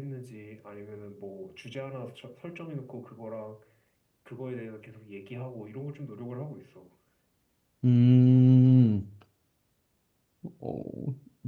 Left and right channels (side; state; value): both; identical; correlation 1.00